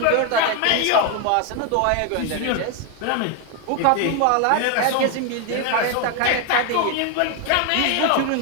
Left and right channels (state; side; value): different; both; correlation 0.01